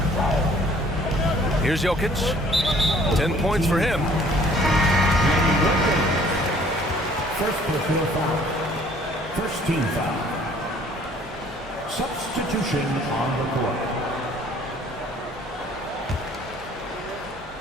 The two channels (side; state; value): both; normal; correlation 0.56